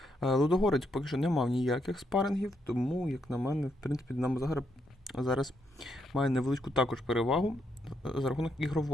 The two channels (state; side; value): normal; both; correlation 0.78